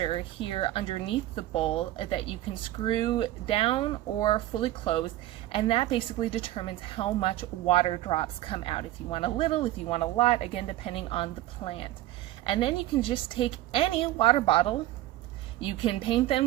here underneath the bowl that you can screw down or fully close, and that basically determines how much water drops come out. If you want a little, if you want a lot, again depending on the plant. And then you can just take any water bottle, you can paint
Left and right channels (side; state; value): left; quieter; 15.1 dB